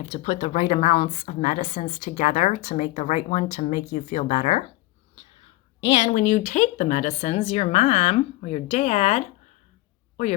to put the right amounts of medicines together to make the right one to make you feel better. And when you take the medicines, your mom or your dad or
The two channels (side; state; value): right; quieter; 18.6 dB